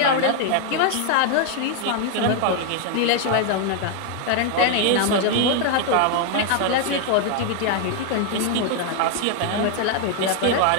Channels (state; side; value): different; both; correlation 0.00